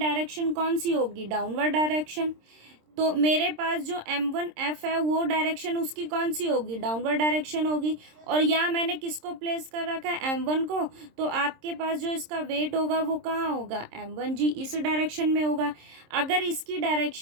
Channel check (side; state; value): left; late; 26 ms